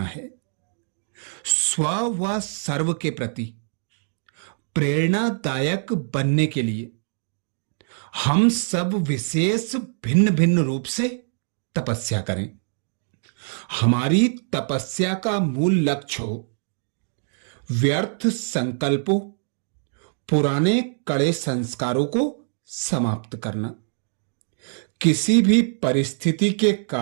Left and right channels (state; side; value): silent; left; digital silence